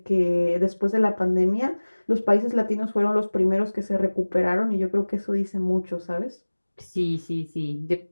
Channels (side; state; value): both; inverted; correlation -1.00